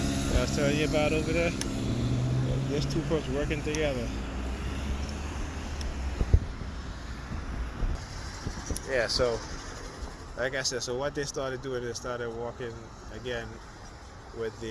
I was telling you about over there. There's two folks working together. Yeah. So, like I said, so what they started doing, they started walking again with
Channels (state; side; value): identical; both; correlation 1.00